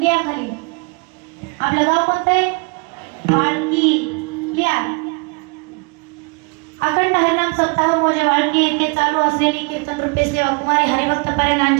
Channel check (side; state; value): left; quieter; 33.4 dB